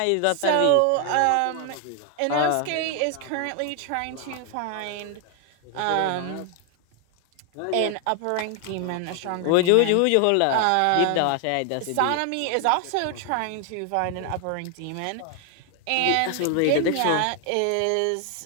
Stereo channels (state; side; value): different; both; correlation 0.00